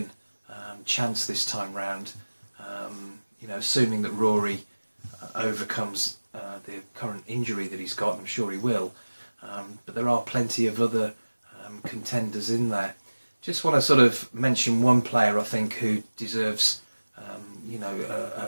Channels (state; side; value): inverted; both; correlation -1.00